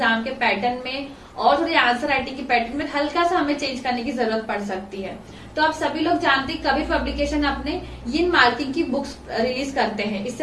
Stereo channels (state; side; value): identical; both; correlation 1.00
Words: के पैटर्न में और थोड़ी आंसर राइटिंग के पैटर्न में हल्का सा हमें चेंज करने की जरूरत पड़ सकती है। तो आप सभी लोग जानते हैं कबीर पब्लिकेशन अपने इन मार्किंग की बुक्स रिलीज करते हैं।